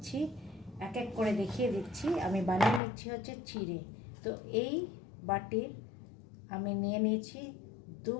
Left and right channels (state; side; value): drops out; right; at 2.8 s